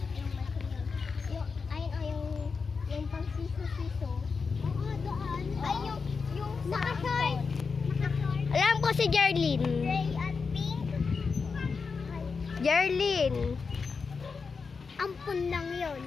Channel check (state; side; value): quieter; right; 5.0 dB